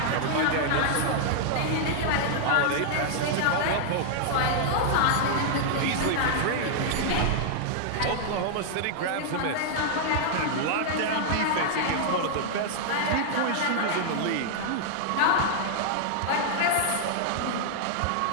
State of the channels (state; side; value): different; both; correlation -0.01